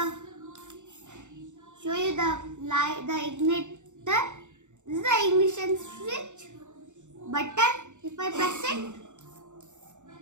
light, the igniter. This is the ignition switch button. If I press it,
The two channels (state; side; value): late; left; 0.84 ms